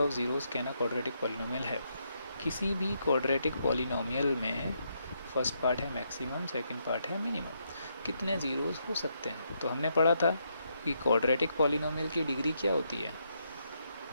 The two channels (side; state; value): both; inverted; correlation -0.78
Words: zeros can a quadratic polynomial है। किसी भी क्वाड्रेटिक पॉलिनोमियल में फर्स्ट पार्ट है मैक्सिमम, सेकंड पार्ट है मिनिमम, कितने ज़ीरोज़ हो सकते हैं। तो हमने पढ़ा था कि क्वाड्रेटिक पॉलिनोमियल की डिग्री क्या होती है,